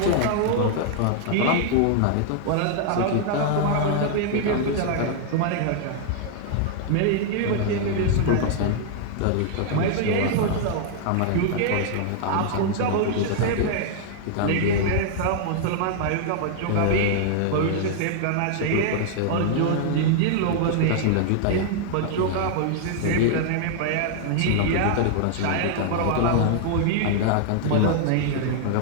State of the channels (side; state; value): both; different; correlation -0.01